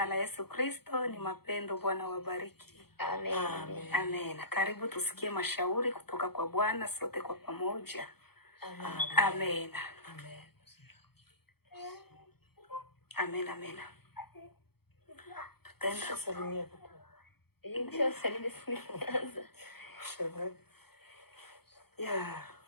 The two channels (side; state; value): right; late; 0.96 ms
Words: la Yesu Kristo, ni mapendo. Bwana wabariki. Amen. Amen. Amen. Karibu tusikie mashauri kutoka kwa Bwana sote kwa pamoja. Amen. Amen. Amen. Amen, amen. Tutaenda Salimia Ndio salimi sinaanza. Shalom.